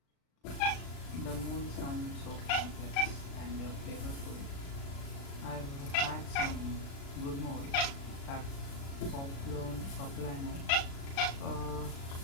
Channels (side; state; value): right; late; 36 ms